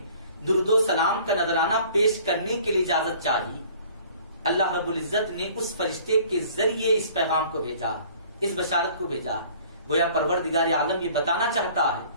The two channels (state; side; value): inverted; both; correlation -0.52